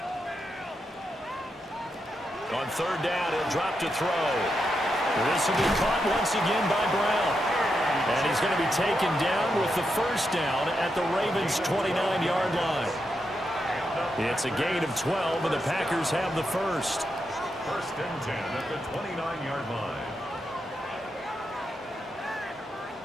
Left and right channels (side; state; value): both; normal; correlation 0.84